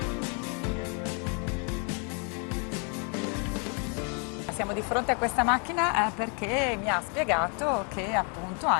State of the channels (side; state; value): right; quieter; 37.4 dB